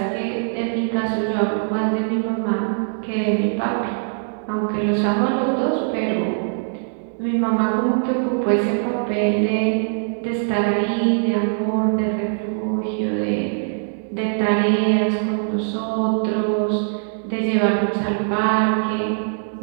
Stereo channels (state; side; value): silent; left; digital silence